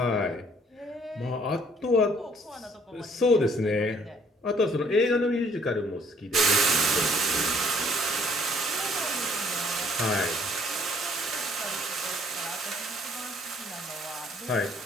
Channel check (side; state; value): both; normal; correlation 0.61